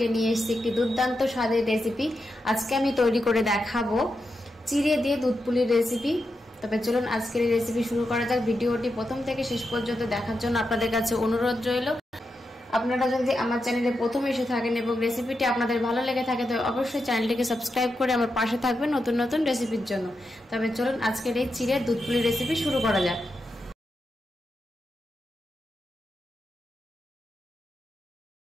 নিয়ে এসেছি একটি দুর্দান্ত স্বাদের রেসিপি। আজকে আমি তৈরি করে দেখাবো চিড়ে দিয়ে দুধ পুলির রেসিপি। তবে চলুন আজকের এই রেসিপি শুরু করা যাক। ভিডিওটি প্রথম থেকে শেষ পর্যন্ত দেখার জন্য আপনাদের কাছে অনুরোধ রইল। আপনারা যদি আমার চ্যানেলে প্রথম এসে থাকেন এবং রেসিপিটি আপনাদের ভালো লেগে থাকে তো অবশ্যই চ্যানেলটিকে সাবস্ক্রাইব করে আমার পাশে থাকবেন নতুন নতুন রেসিপির জন্য। তবে চলুন আজকের এই চিড়ে দুধ পুলির রেসিপি শুরু করা যাক।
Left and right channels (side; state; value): both; normal; correlation 0.87